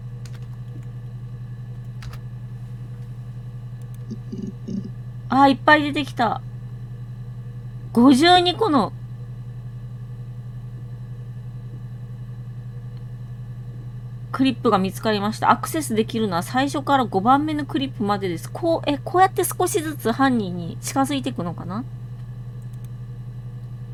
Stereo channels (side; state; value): both; identical; correlation 1.00